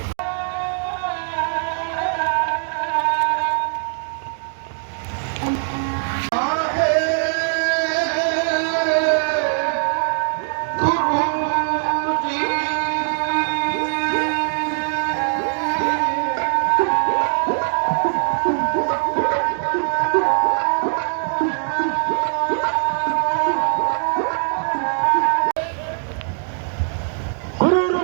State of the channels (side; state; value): left; silent; digital silence